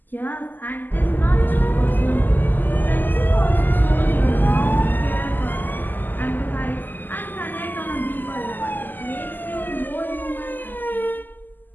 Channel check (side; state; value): right; late; 0.088 ms